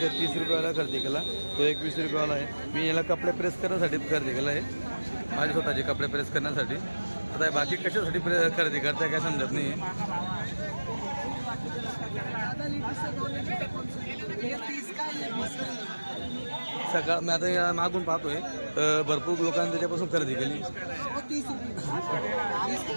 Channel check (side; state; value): both; inverted; correlation -1.00